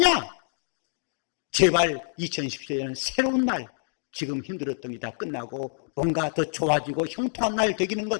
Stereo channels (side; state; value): right; silent; digital silence